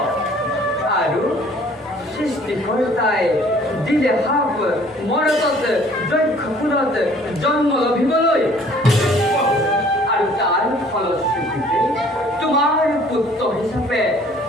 আৰু সৃষ্টিকৰ্তাই দিলে সাপ মৰতত যক্ষ কুলত জন্ম লভিবলৈ আৰু তাৰ ফলশ্ৰুতিতে তোমাৰ পুত্ৰ হিচাপে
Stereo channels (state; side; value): normal; both; correlation 0.55